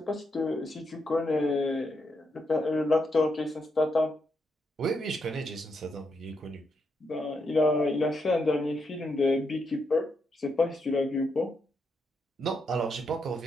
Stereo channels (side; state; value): both; normal; correlation 0.81